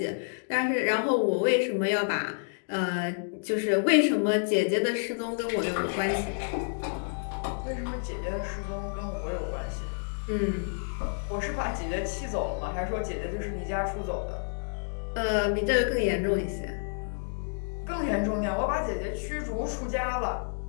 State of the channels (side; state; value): right; silent; digital silence